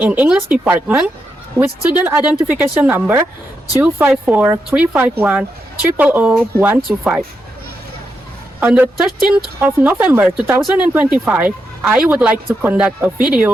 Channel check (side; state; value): both; normal; correlation 0.84